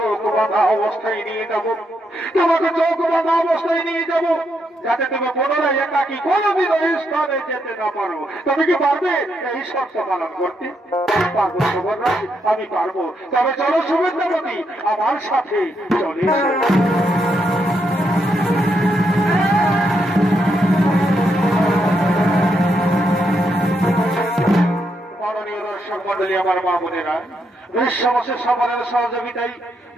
বাঁধা অবস্থায় নিয়ে যাবো, তোমাকে চোখ বাঁধা অবস্থায় নিয়ে যাবো, যাতে তুমি পুনরায় একাকি কোনোদিন ওই স্থানে যেতে না পারো। তুমি কি পারবে এই শর্ত পালন করতে? পারবো সবরাজ, আমি পারবো। তবে চলো সুবিদ্যাপতি, আমার সাথে চলে মন্ডলী, আমার মা বোনেরা, বিশ্ববসের সফরের সহযোগিতায়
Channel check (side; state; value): both; normal; correlation 0.79